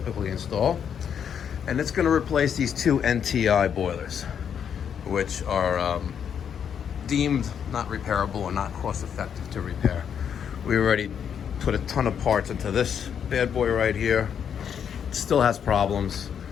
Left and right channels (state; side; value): quieter; right; 8.0 dB